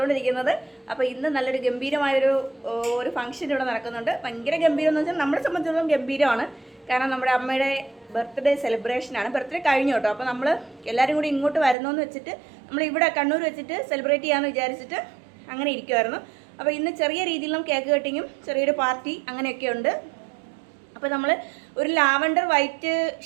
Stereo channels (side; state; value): left; drops out; at 11.8 s